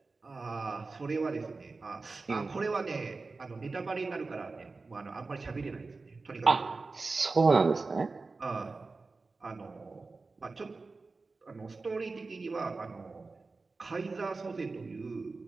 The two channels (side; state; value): left; quieter; 3.9 dB